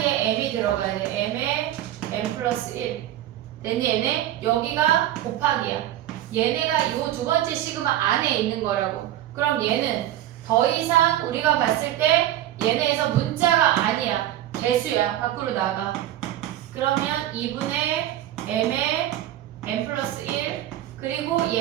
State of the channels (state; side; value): quieter; left; 13.0 dB